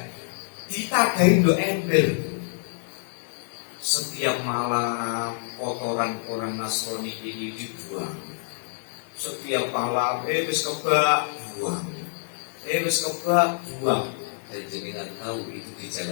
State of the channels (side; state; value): right; silent; 59 dB below the other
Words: Ditadahi ndo ember. Setiap malam kotoran orang Nasrani ini dibuang. Setiap malam wis kebak buang. Wis kebak buang. Dan jenengan tahu itu